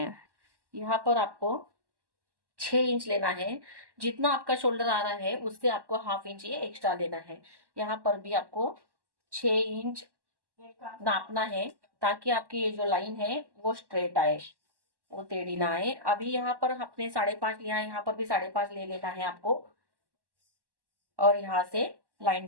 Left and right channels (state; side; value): late; left; 1.1 ms